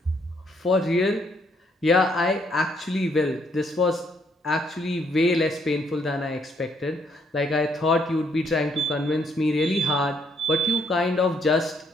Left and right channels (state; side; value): normal; both; correlation 0.70